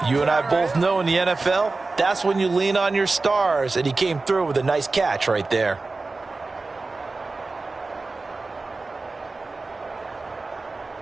you and I both know in the NFL, that's when you lean on your stars, and he came through with a nice catch right there.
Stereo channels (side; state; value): left; quieter; 3.6 dB